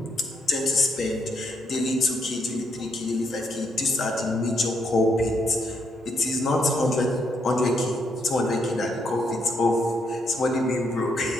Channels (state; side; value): normal; both; correlation 0.75